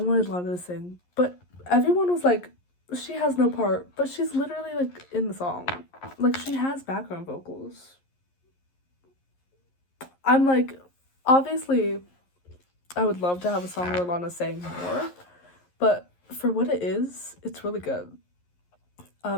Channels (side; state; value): right; late; 11 ms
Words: Lana to sing, but everyone was like, she has no part, but she's literally like in the song. Like she has background vocals. I'm like, obviously I would love to have a song where Lana sang more, but for what it is, it's really good.